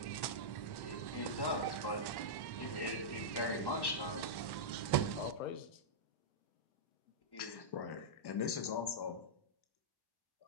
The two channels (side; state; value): right; late; 1.1 ms